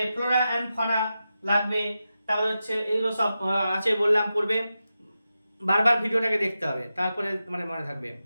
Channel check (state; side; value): inverted; both; correlation -0.91